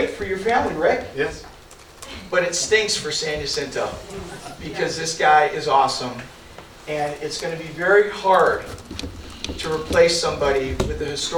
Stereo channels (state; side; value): identical; both; correlation 1.00